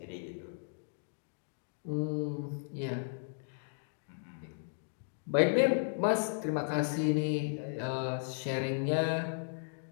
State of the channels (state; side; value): silent; right; digital silence